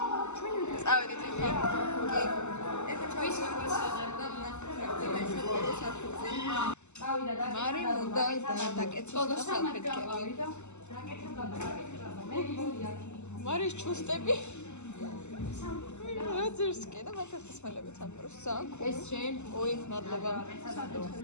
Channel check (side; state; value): right; late; 0.83 ms